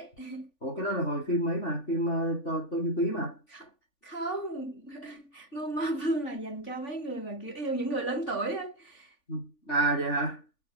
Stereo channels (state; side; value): late; right; 3.5 ms